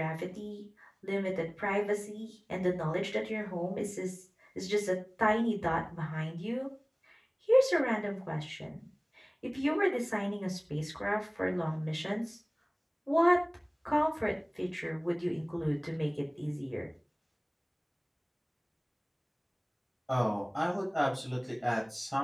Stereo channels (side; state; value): both; identical; correlation 1.00